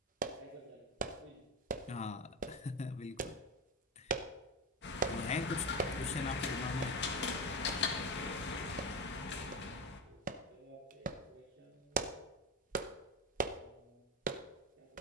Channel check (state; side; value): normal; both; correlation 0.18